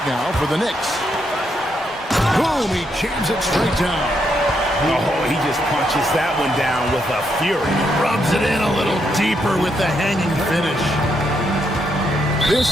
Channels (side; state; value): both; normal; correlation 0.78